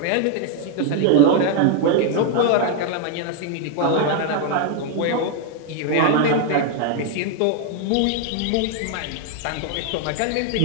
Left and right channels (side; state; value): both; different; correlation 0.01